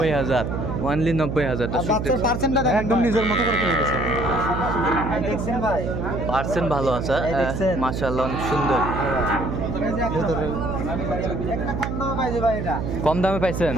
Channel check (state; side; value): noise; right; hum, 3 dB below the sound